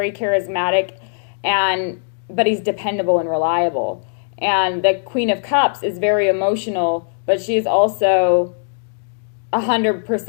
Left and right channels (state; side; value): silent; right; digital silence